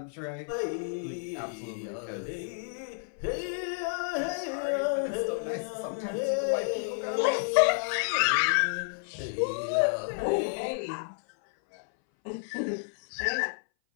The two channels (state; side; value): silent; right; 57 dB below the other